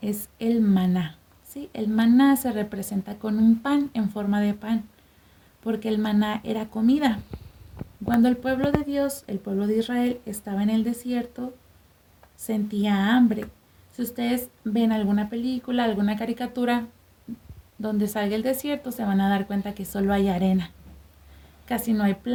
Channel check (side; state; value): both; identical; correlation 1.00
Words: es el maná. ¿Sí? El maná se representa con un pan en forma de pan, porque el maná era comida. Cuando el pueblo de Dios, el pueblo de Israel, estaba en el desierto, sentía hambre. Si ustedes ven alguna película, alguna caricatura donde salga el desierto, se van a dar cuenta que solo hay arena. Casi no hay